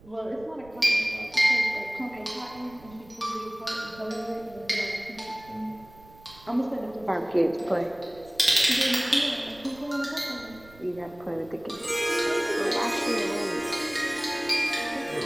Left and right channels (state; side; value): noise; right; rumble, 23 dB below the sound